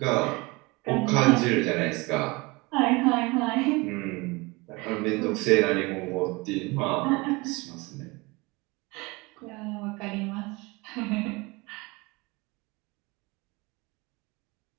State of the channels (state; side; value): quieter; left; 25.0 dB